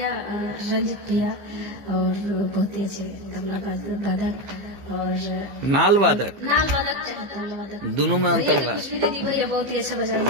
रंजित भैया और बहुत ही अच्छे तबला वादक और नाल वादक दोनों में अंतर है। दीदी भैया बहुत ही अच्छा बजाएंगे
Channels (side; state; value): left; late; 15 ms